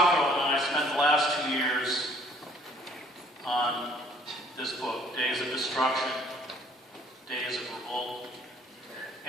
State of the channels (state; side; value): normal; both; correlation 0.58